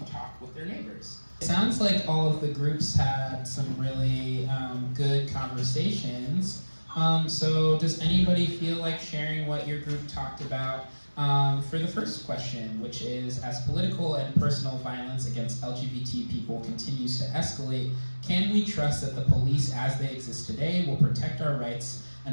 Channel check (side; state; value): both; inverted; correlation -1.00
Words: talk with their neighbors. It sounds like all of the groups had some really good conversations. So does anybody feel like sharing what your group talked about? For the first question, which is, as political and personal violence against LGBT people continues to escalate, can we trust that the police as they exist today will protect our rights